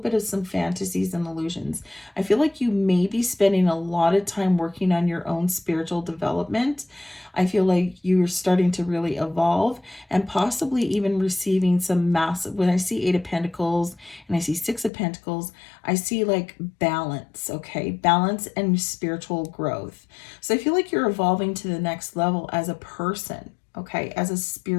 of some fantasies and illusions. I feel like you may be spending a lot of time working on your own spiritual development. I feel like you're starting to really evolve and possibly even receiving some massive, when I see 8 of Pentacles and I see 6 of Pentacles, I see like balance, okay? Balance and spiritual growth. So I feel like you're evolving to the next level as a person, okay? As a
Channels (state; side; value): drops out; right; at 14.9 s